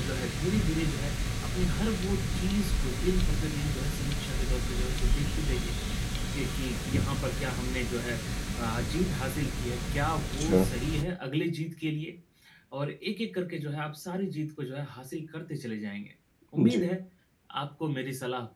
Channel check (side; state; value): both; identical; correlation 1.00